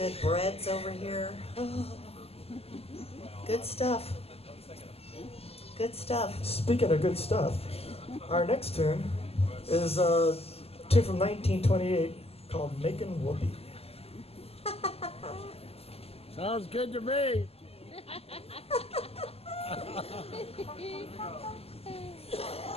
breads over here. Oh, good stuff. Good stuff. Speaking of good stuff, our next tune is a tune from 1928. Called Making Whoopee. Sounds good to me.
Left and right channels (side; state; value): right; late; 0.29 ms